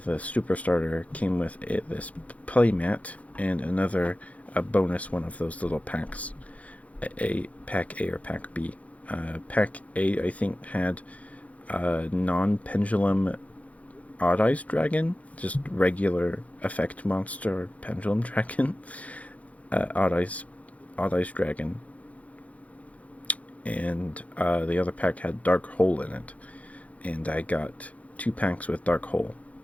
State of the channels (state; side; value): late; right; 0.067 ms